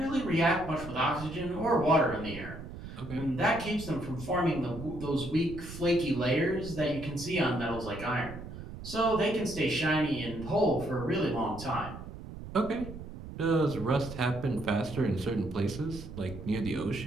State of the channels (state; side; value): noise; right; rumble, 11 dB below the sound